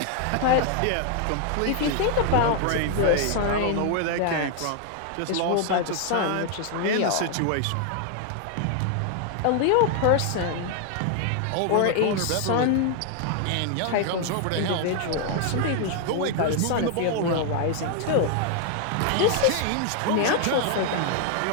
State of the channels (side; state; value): both; different; correlation 0.00